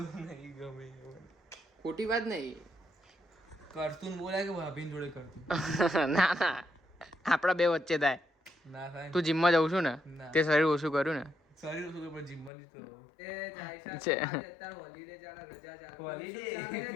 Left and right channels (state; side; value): drops out; right; at 12.5 s